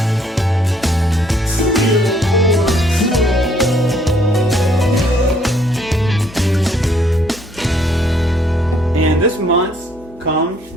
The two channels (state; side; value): normal; both; correlation 0.66